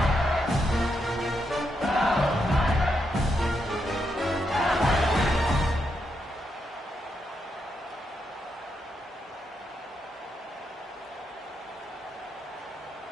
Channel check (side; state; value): both; normal; correlation 0.82